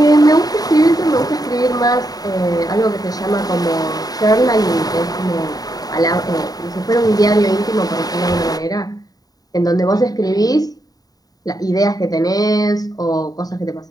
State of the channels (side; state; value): right; late; 0.18 ms